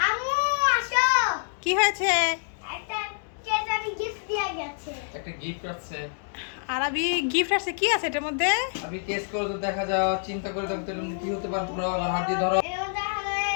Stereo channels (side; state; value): right; silent; digital silence